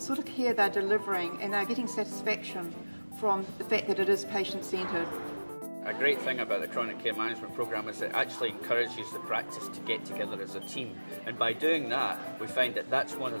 of care they're delivering and they're getting satisfaction from the fact that it is patient-centred. A great thing about the chronic care management programme is it actually encourages the practice to get together as a team, and by doing that we find that that's one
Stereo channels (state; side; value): inverted; both; correlation -1.00